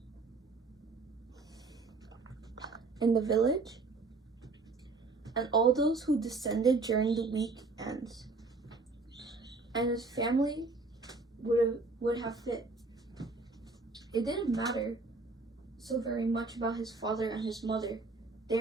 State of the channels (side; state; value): left; quieter; 3.7 dB